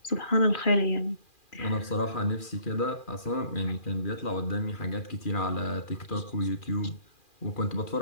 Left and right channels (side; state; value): right; late; 2.4 ms